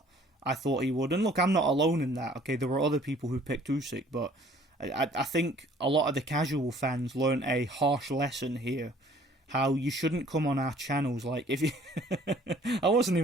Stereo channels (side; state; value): both; normal; correlation 0.55